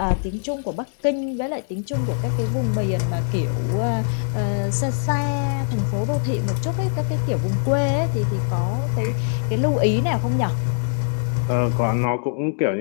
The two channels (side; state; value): right; silent; digital silence